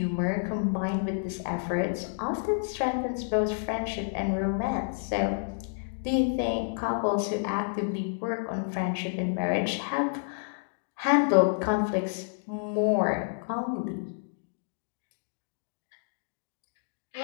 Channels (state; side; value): silent; right; digital silence